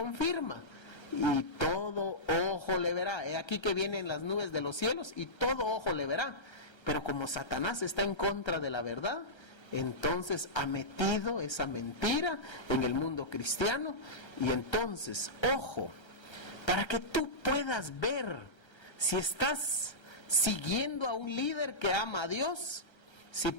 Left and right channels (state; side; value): late; right; 1.3 ms